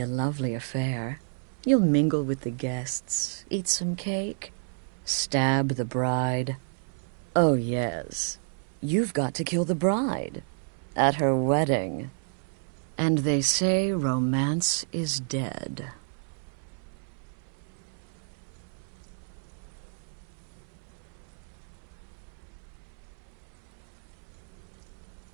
a lovely affair. You'll mingle with the guests, eat some cake, stab the bride. Oh, yes. You've got to kill the bride. At her wedding. And they say romance is dead.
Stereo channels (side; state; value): left; silent; 58 dB below the other